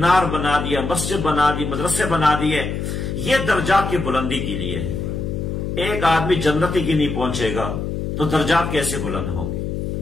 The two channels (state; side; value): noise; left; hum, 3 dB below the sound